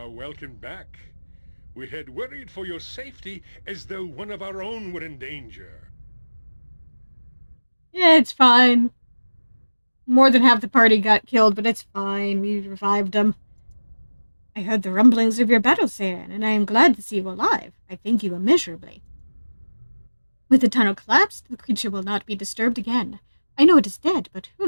welcome back. We had worried for your safety as though one of our own were in danger. Yeah, it's fine. More than half the party got killed, but it's fine. We revived them. I heard the rumblings of your battle, Saren, and I am glad to see you alive. I thank you immeasurably. With the tunnel collapsed, the creature will not be disturbed again. I know it is dead, but who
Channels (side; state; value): both; inverted; correlation -1.00